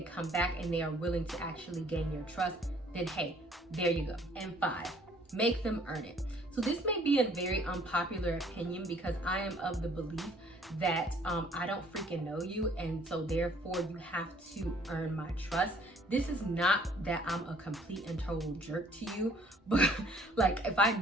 come back and they are willing to actually gain your trust, then hey, there you go. And 5, make them earn it. So this may be a very unpopular opinion, because I am of the belief that I don't freaking know you, and so therefore you have to earn my trust. This is not that I'm a complete and total jerk to you, but like if I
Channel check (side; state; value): both; normal; correlation 0.59